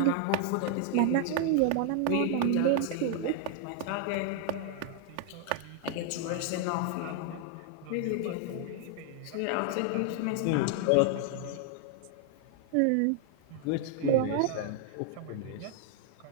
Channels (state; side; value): different; both; correlation 0.00